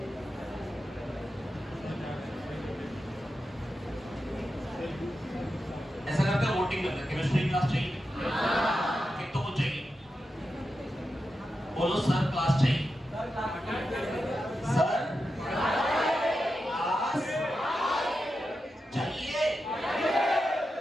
ऐसा करते हैं, वोटिंग करते हैं। केमिस्ट्री क्लास चाहिए? एक तो वो चाहिए, बोलो सर क्लास चाहिए। सर क्लास चाहिए।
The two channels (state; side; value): normal; both; correlation 0.89